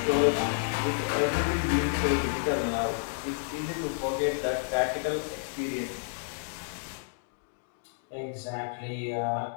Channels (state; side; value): silent; right; digital silence